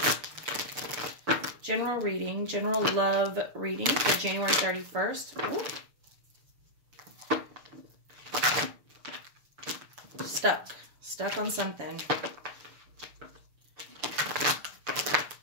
General reading, general love reading for January 31st. Ooh. Stuck on something.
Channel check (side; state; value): left; late; 6.8 ms